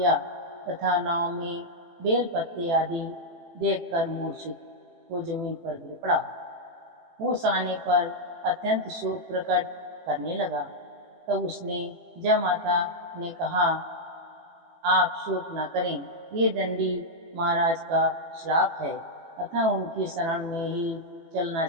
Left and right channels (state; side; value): late; left; 18 ms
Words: तथा नाव में बेल पत्ते आदि देखकर मूर्छित हो जमीन पर गिर पड़ा। होश आने पर अत्यंत शोक प्रकट करने लगा। तब उसने जयमाता ने कहा, आप शोक न करें, ये दंडी महाराज का श्राप है, अतः उनकी शरण में ही चलना